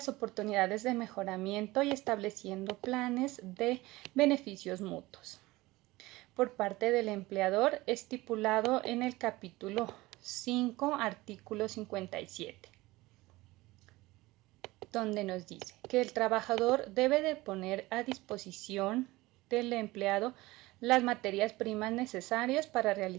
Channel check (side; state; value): left; quieter; 19.9 dB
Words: oportunidades de mejoramiento y estableciendo planes de beneficios mutuos por parte del empleador, estipulado en el capítulo 5, artículo 57. Donde nos dice que el trabajador debe de poner a disposición del empleado las materias primas necesarias para